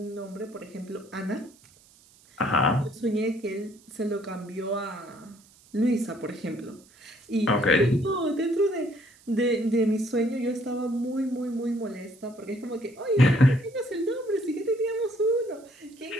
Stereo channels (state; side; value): noise; right; hiss, 27 dB below the sound